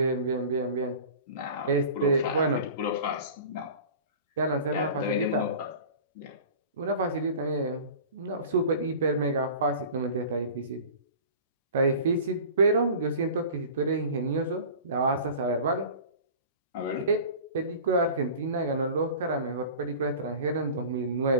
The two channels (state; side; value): inverted; both; correlation -0.40